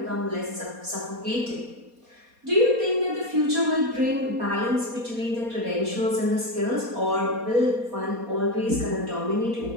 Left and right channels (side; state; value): left; late; 4.2 ms